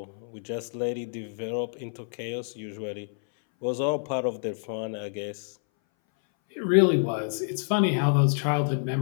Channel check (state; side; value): silent; right; 59 dB below the other